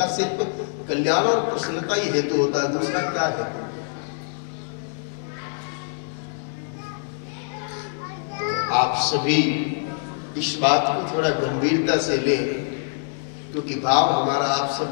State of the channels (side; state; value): right; silent; digital silence